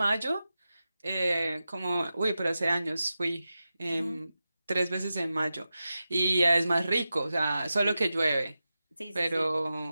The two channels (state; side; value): inverted; both; correlation -0.92